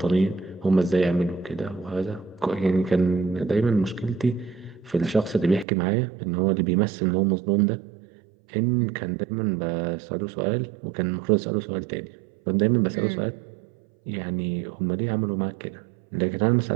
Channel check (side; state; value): left; drops out; at 5.7 s